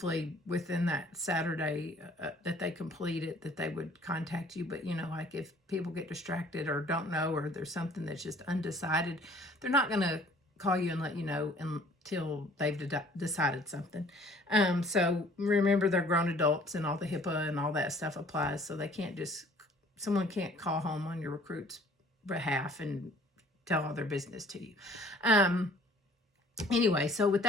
within that Saturday that they complete it, that they would contact you. But, like, if people get distracted or don't know, or there's something that's just undecided, they're not going to call you and let you know until they've decided something. So remember, they're grown adults and all the HIPAA and all that stuff applies. So someone can't call home on your recruit's behalf and tell all their business to you. Anyway, so with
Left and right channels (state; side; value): normal; both; correlation 0.54